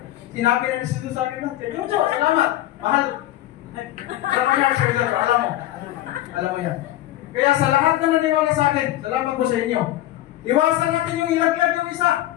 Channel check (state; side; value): quieter; right; 14.6 dB